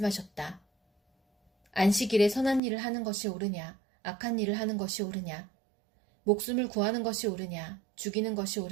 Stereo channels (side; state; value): left; drops out; at 2.6 s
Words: 안식일에 선한 일을 하는 것이 옳으냐, 악한 일을 하는 것이 옳으냐, 목숨을 구하는 것이 옳으냐, 죽이는 것이